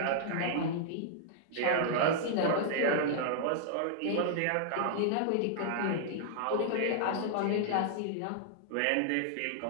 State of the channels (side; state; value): both; different; correlation -0.01